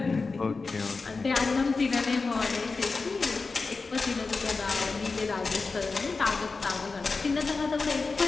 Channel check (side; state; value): right; quieter; 4.2 dB